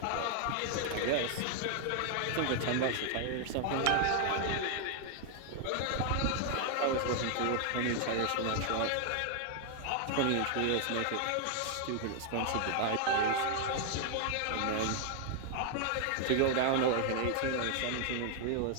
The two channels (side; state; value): both; different; correlation 0.00